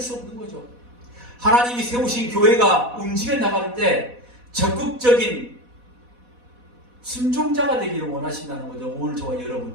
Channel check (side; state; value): left; late; 4.1 ms